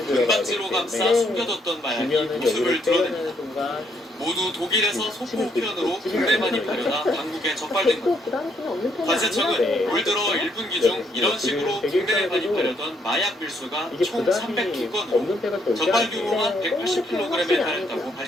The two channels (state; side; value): normal; both; correlation 0.72